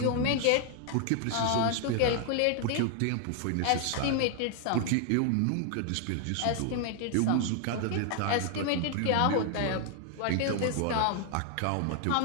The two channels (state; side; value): different; both; correlation 0.00